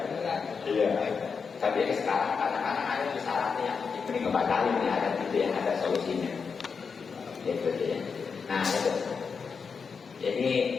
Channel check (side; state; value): right; quieter; 5.6 dB